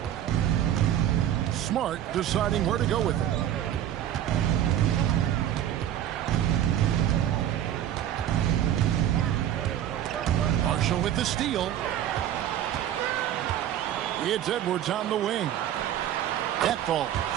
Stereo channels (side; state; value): left; quieter; 11.2 dB